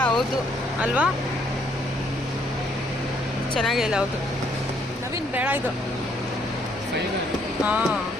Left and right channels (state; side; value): normal; both; correlation 0.68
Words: ಹೌದು ಅಲ್ವಾ, ಚೆನ್ನಾಗಿಲ್ಲ, ಹೌದು ನವೀನ್ ಬೇಡ ಇದು. ಹಾಂ